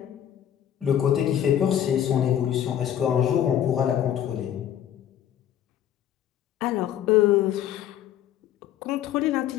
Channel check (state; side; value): quieter; right; 10.5 dB